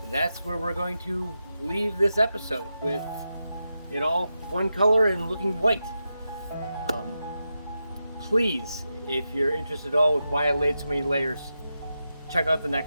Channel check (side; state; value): both; inverted; correlation -0.89